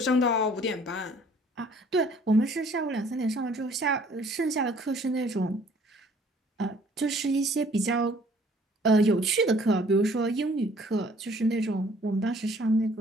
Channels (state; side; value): normal; both; correlation 0.57